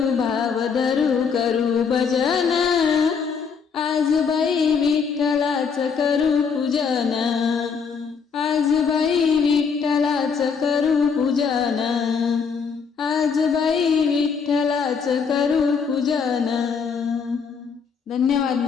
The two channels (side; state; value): right; quieter; 5.9 dB